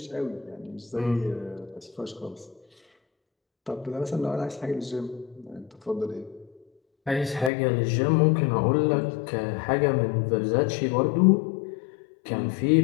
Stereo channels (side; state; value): right; drops out; at 7.5 s